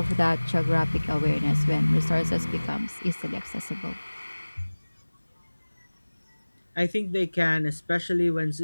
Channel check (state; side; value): inverted; both; correlation -1.00